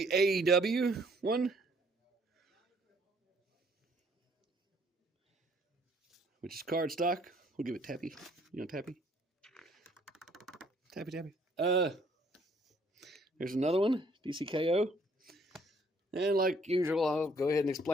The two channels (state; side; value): normal; both; correlation 0.63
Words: AEW one, which is cardstock. We'll give it tappy. Tappy. Tappy, tappy. There's another one, DCKO. And like usual, I'll go ahead and